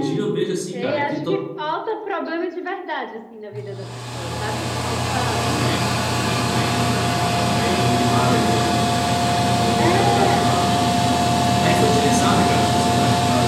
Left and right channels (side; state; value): both; identical; correlation 1.00